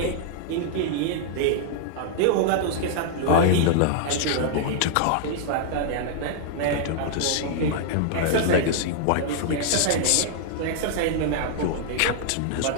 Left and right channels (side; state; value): both; different; correlation -0.01